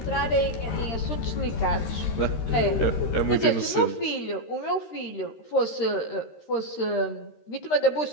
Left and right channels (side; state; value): right; late; 13 ms